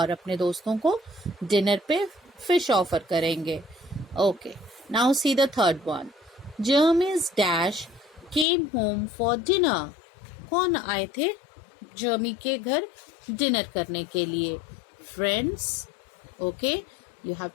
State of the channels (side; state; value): right; drops out; at 8.5 s